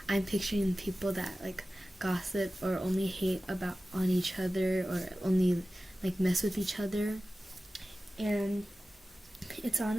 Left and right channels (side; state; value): both; normal; correlation 0.95